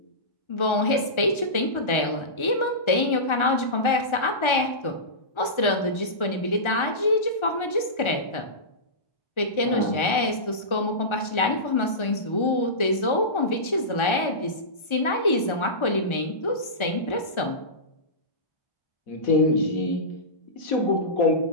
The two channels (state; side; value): late; right; 1.3 ms